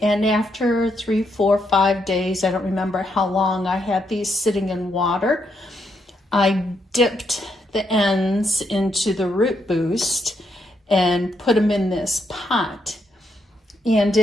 And after 3, 4, 5 days, I don't remember how long I had these sitting in water, I dipped the ends into the root boost and put them in this pot. And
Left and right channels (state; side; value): normal; both; correlation 0.78